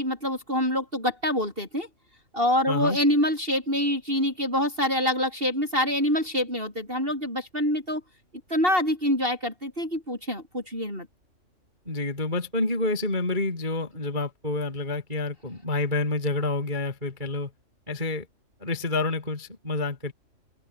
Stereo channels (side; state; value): left; late; 2.7 ms